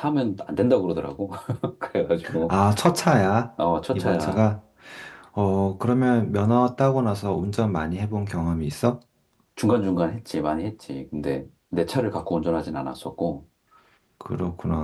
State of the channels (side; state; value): both; identical; correlation 1.00